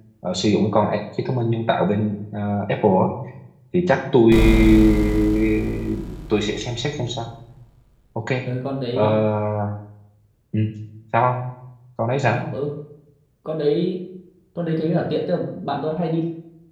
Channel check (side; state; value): both; identical; correlation 1.00